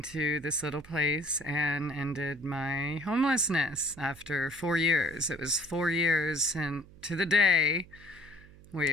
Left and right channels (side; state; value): right; noise; hum, 22 dB below the sound